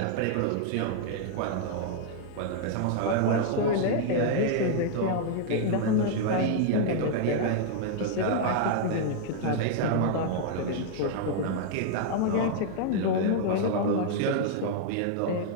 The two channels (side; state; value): both; different; correlation 0.00